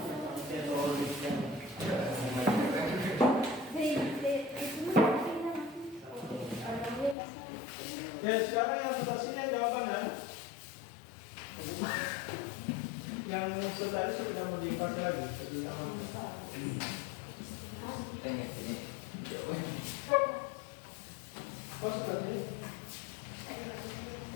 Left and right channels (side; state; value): right; drops out; at 7.2 s